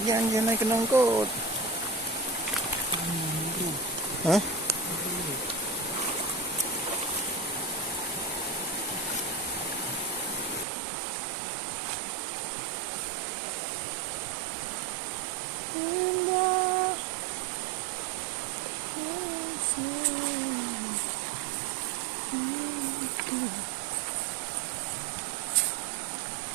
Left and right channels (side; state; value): left; drops out; at 10.7 s